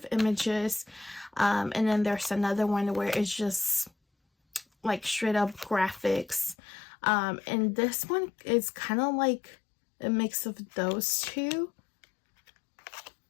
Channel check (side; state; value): right; drops out; at 6.6 s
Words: images. And then there's another one where it's just like straight up graphics. And this one is kind of like a mix of those two,